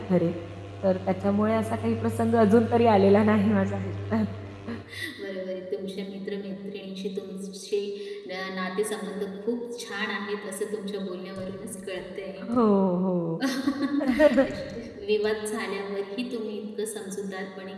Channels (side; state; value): both; identical; correlation 1.00